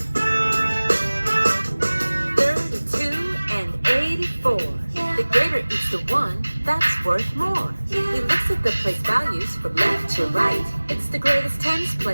That's worth more. He looks at the place values from left to right. It's the greatest tens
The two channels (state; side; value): inverted; both; correlation -1.00